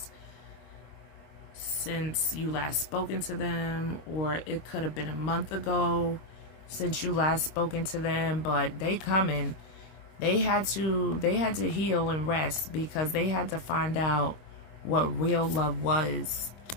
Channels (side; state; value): right; late; 26 ms